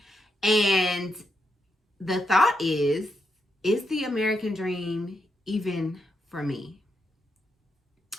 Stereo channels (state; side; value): normal; both; correlation 0.82